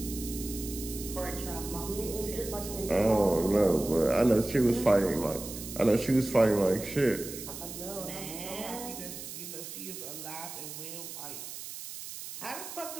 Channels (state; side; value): noise; right; hiss, 10 dB below the sound